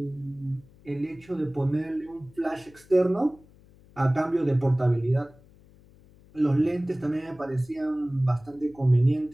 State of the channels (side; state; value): left; noise; hum, 26 dB below the sound